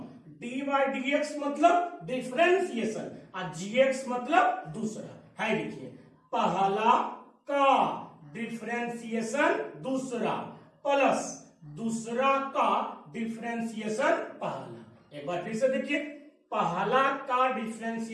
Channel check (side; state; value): both; identical; correlation 1.00